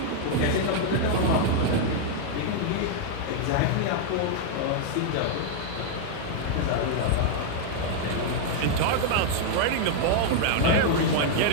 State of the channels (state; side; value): different; both; correlation 0.00